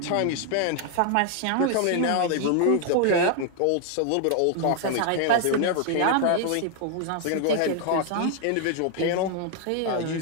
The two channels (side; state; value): both; different; correlation 0.00